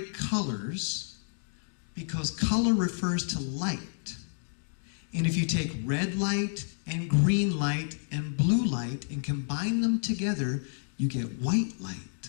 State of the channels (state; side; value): silent; right; digital silence